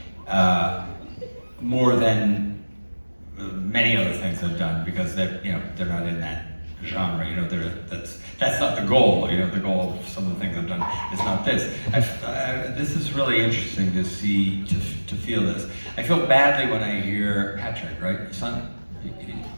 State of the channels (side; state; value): both; inverted; correlation -1.00